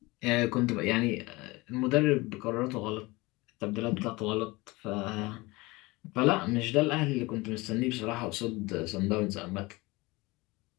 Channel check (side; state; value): right; quieter; 22.8 dB